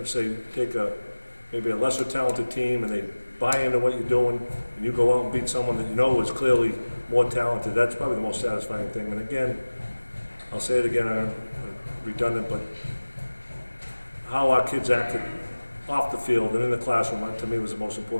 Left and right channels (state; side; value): inverted; both; correlation -1.00